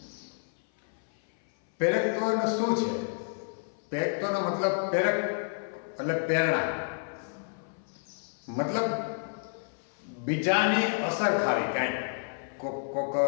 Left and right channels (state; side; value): silent; right; 58 dB below the other